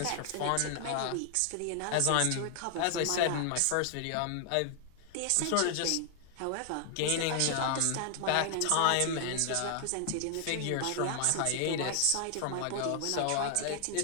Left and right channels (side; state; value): both; different; correlation 0.00